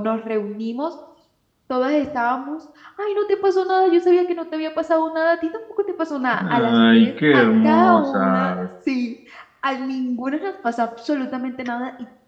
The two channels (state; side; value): identical; both; correlation 1.00